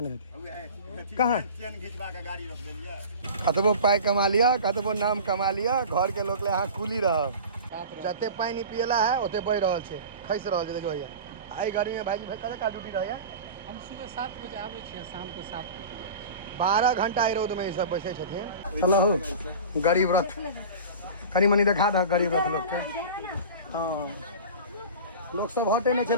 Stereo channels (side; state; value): both; inverted; correlation -0.35